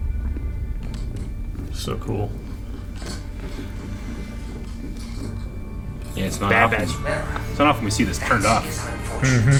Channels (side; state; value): both; identical; correlation 1.00